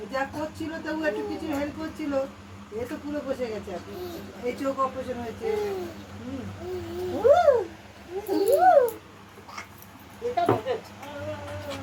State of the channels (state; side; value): identical; both; correlation 1.00